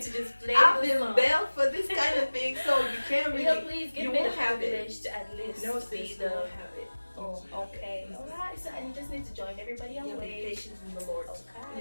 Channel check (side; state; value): both; inverted; correlation -1.00